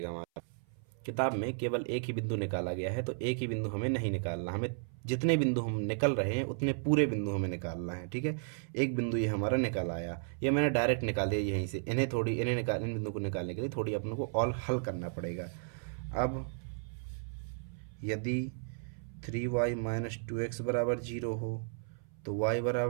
हमारा किताब में केवल एक ही बिंदु निकाला गया है, तो एक ही बिंदु हमें नहीं निकालना, हमें जितने बिंदु हम निकल रहे हैं उतने पूरे बिंदु हमें निकालना है। ठीक है, एक बिंदु ये हमारा निकल आया, ये मैंने डायरेक्ट निकाल दिया यहीं से। इन बिंदु को निकालने के लिए थोड़ी अपने को और हल करना पड़ेगा। अब यदि 3y माइनस 2x बराबर जीरो हो तो y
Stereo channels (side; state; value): left; silent; 55 dB below the other